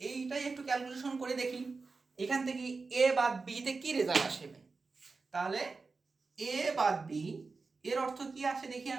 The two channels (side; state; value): left; quieter; 4.2 dB